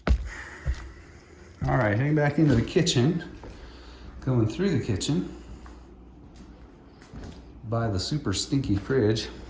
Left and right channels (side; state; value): both; identical; correlation 1.00